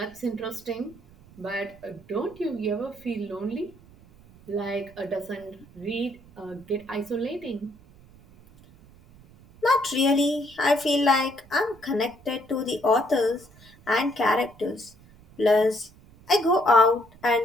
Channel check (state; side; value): noise; right; rumble, 24 dB below the sound